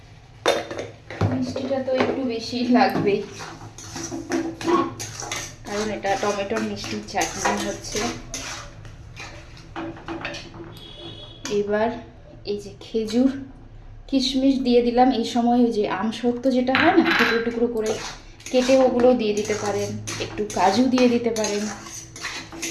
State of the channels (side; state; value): both; identical; correlation 1.00